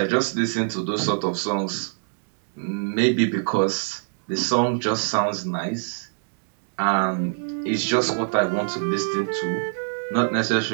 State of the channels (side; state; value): left; silent; 62 dB below the other